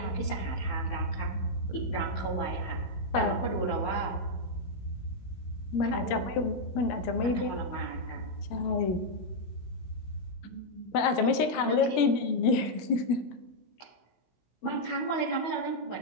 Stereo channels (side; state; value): right; late; 17 ms